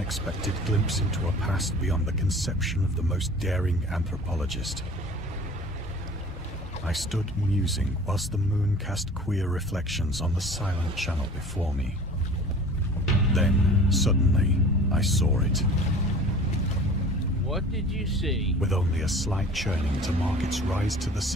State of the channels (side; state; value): both; normal; correlation 0.44